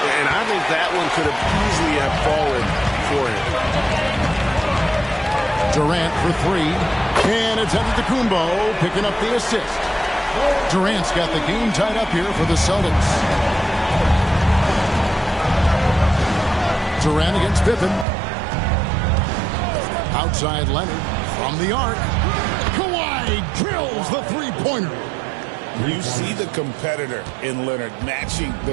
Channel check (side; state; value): left; drops out; at 18.1 s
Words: And I think that one could have easily have fallen for him. Durant for 3. And it's Antetokounmpo picking up the assist. Durant's got the game tied up here for the Celtics. Durant against Pippen. Outside Leonard from the arc. Kawhi drills the three-pointer. You see the competitor in Leonard matching